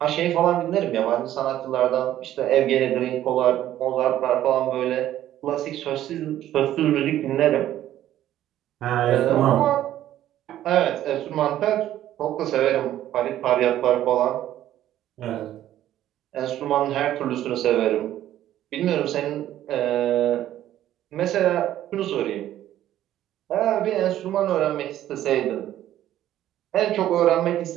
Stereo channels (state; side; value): quieter; left; 12.6 dB